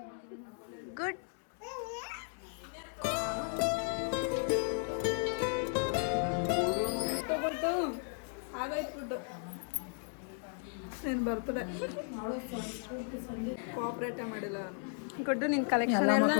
ಗುಡ್. ನೀನು ಬರ್ತಡೆ ಕೋಆಪ್ರೇಟೇ ಮಾಡಿಲ್ಲ ಗುಡ್ಡು ನಿನ್ನ ಕಲೆಕ್ಷನ್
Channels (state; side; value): silent; right; 54 dB below the other